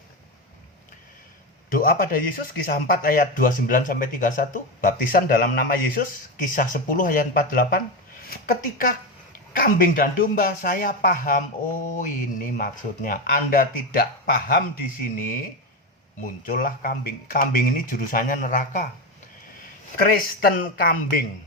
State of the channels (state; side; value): normal; both; correlation 0.15